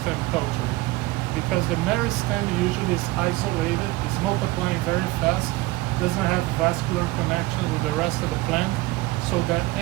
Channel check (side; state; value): left; quieter; 19.9 dB